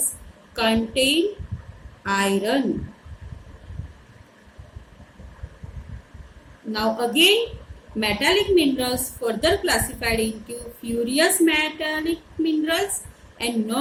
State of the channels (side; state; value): both; identical; correlation 1.00